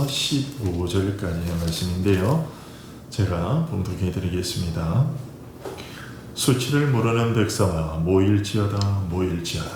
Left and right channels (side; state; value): both; identical; correlation 1.00